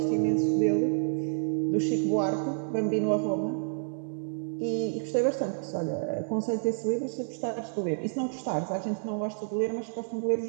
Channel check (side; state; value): left; silent; 58 dB below the other